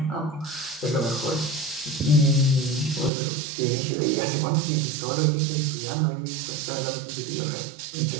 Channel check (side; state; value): left; drops out; at 3.1 s